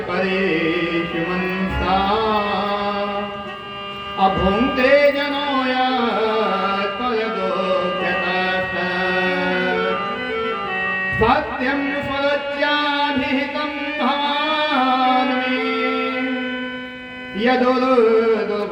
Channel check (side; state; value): both; identical; correlation 1.00